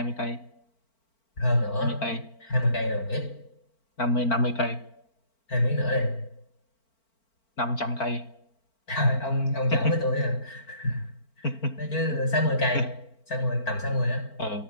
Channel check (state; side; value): late; right; 4.4 ms